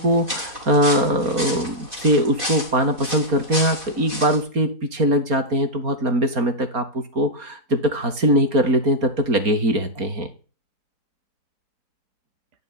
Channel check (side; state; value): left; late; 4.3 ms